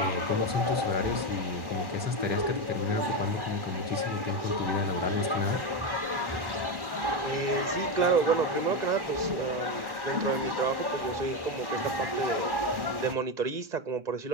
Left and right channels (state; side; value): late; left; 1.1 ms